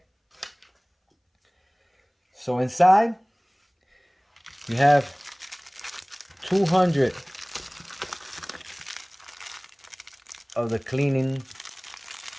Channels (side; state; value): both; identical; correlation 1.00